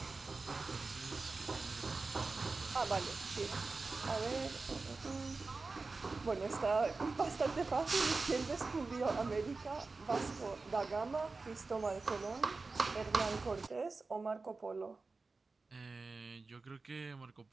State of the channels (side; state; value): left; quieter; 3.9 dB